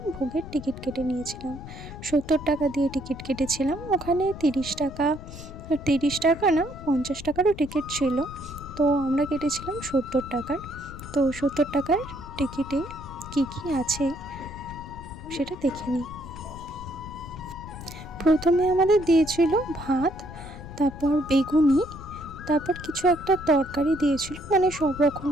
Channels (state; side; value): noise; left; rumble, 13 dB below the sound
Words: ভোগের টিকিট কেটে নিয়েছিলাম। 70 টাকা দিয়ে টিকিট কেটেছিলাম। ওখানে 30 টাকা না, 50 টাকারও টিকিট ছিল। তো আমরা কেটেছিলাম 70 টাকার। তো 70 টাকার টিকিটে কি কি আছে সেটা দেখে নিই। প্রথমে আমাদের দিয়েছিল ভাত, তারপর বেগুনি, তারপর কিছু একটা তরকারি দিয়েছিল, মানে সব রকম